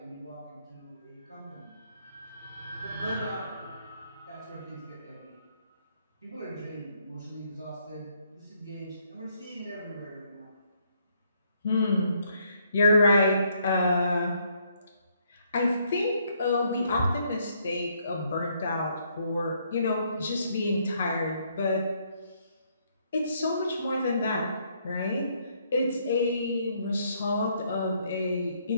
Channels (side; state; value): both; inverted; correlation -0.71